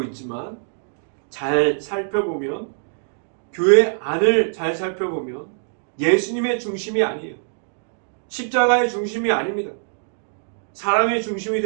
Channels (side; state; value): left; silent; digital silence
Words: 있지만, 잘 살펴보면, 교회 안을 잘 살펴보면 예수님의 중심이 아니에요. 십자가의 중심이 아닙니다. 사람의 중심이